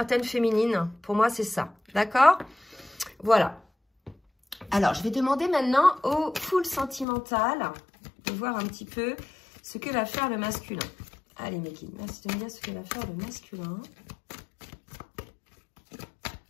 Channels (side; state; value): right; drops out; at 7.1 s